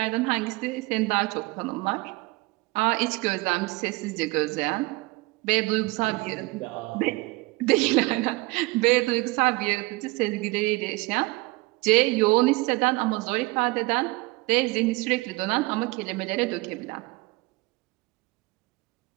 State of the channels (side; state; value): left; quieter; 23.6 dB